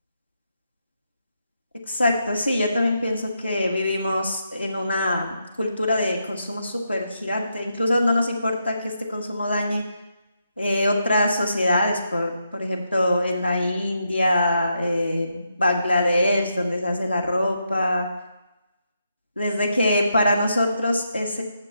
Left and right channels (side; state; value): both; inverted; correlation -0.81